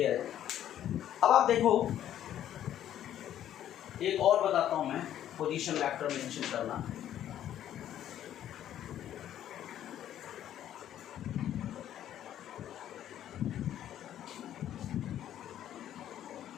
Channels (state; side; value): quieter; right; 11.3 dB